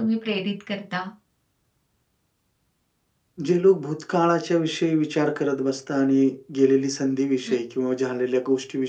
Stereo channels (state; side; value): identical; both; correlation 1.00